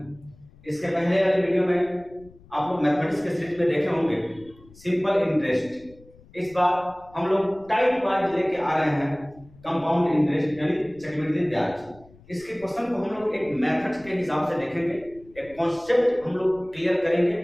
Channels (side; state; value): left; noise; rumble, 25 dB below the sound